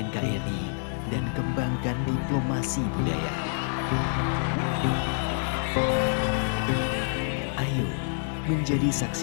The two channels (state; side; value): silent; right; 60 dB below the other